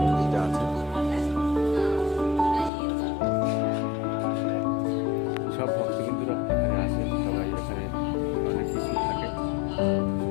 মন্দিরটা আছে। সব ভক্তবিন্দুরা এখানে আসে, সবাই এখানে অনেক কিছু থাকে।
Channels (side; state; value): right; drops out; at 2.7 s